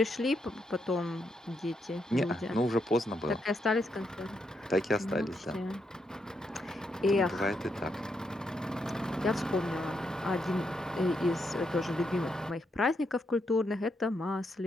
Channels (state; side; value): normal; both; correlation 0.80